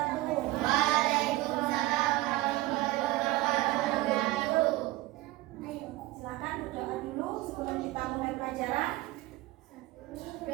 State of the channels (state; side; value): quieter; left; 18.0 dB